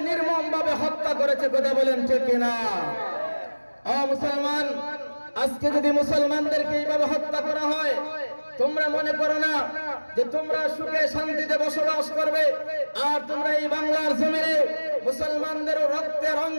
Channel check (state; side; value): inverted; both; correlation -1.00